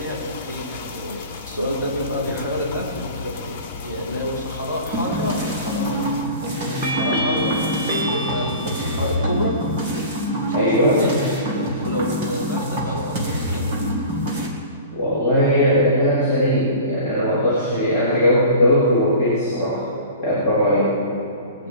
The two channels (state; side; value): inverted; both; correlation -0.39